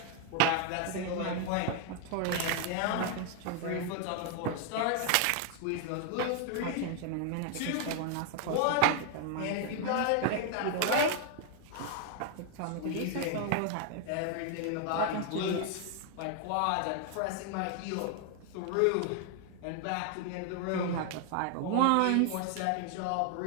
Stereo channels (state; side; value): different; both; correlation 0.00